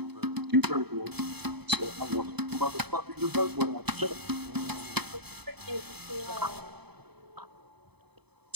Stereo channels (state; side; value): late; left; 0.98 ms